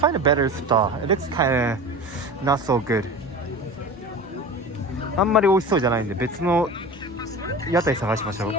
a better stall. It looks kind of not so good. あんまり美味しそうじゃないんで別の屋台探しましょう。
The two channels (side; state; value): both; normal; correlation 0.33